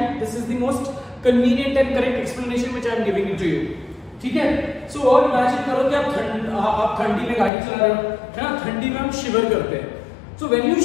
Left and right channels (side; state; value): right; drops out; at 7.5 s